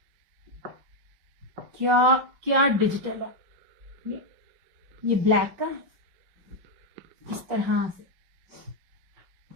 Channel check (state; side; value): late; left; 5.4 ms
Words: क्या क्या डिजिटल है। ये ब्लैक का इस तरह से,